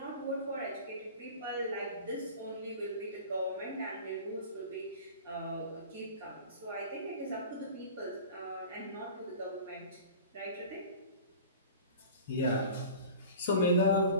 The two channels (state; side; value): inverted; both; correlation -0.39